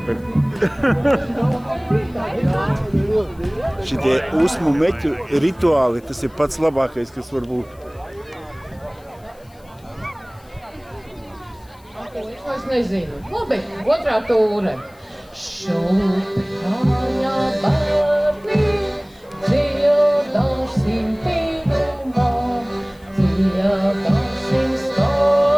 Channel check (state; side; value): noise; left; hiss, 30 dB below the sound